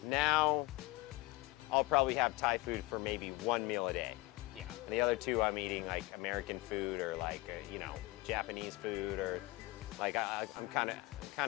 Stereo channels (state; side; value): quieter; right; 20.6 dB